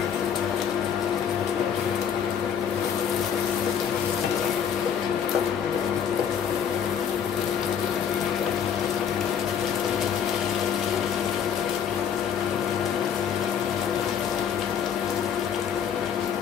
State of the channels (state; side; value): quieter; right; 8.0 dB